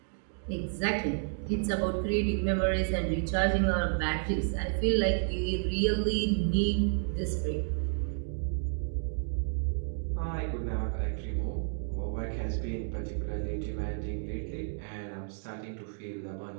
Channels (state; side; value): silent; left; digital silence